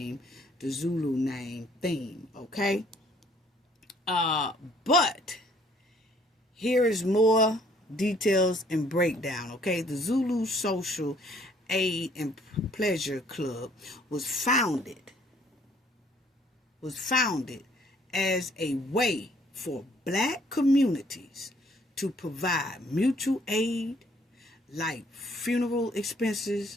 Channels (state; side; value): normal; both; correlation 0.62